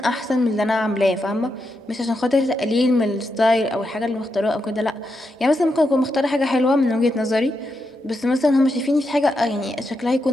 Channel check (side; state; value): both; normal; correlation 0.84